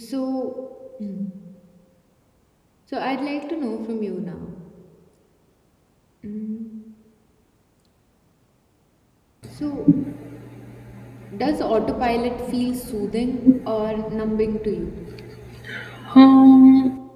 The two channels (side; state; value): both; identical; correlation 1.00